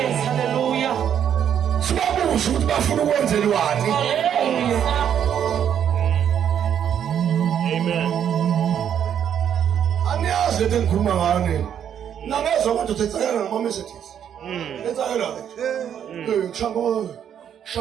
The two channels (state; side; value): quieter; left; 9.1 dB